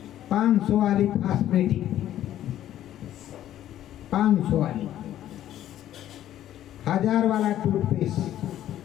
500 वाली फास्मेटिक, 500 वाली, 1000 वाला टूथपेस्ट,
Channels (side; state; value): right; quieter; 12.2 dB